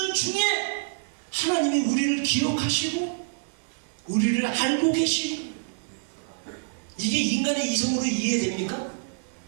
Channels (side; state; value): left; silent; 60 dB below the other